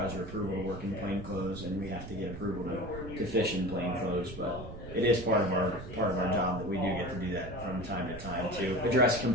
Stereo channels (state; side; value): noise; right; rumble, 11 dB below the sound